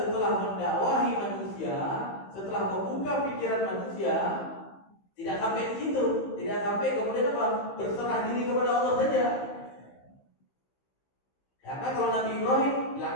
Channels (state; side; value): late; right; 15 ms